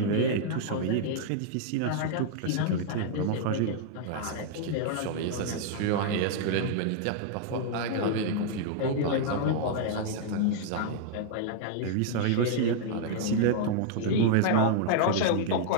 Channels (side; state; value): both; different; correlation -0.01